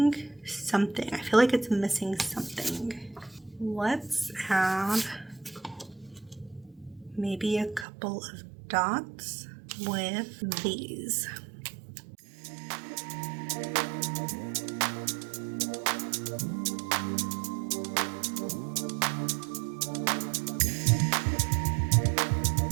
something. I feel like it's missing something. Let's add maybe a couple of dots with these.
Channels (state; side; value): drops out; left; at 7.9 s